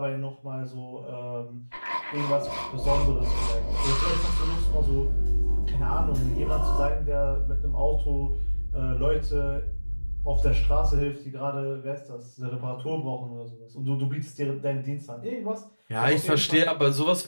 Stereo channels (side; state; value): both; inverted; correlation -1.00